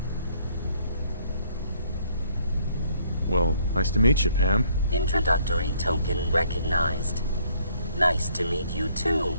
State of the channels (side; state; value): both; inverted; correlation -0.65